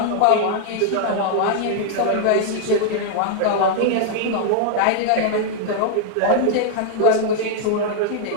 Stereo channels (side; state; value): both; different; correlation 0.00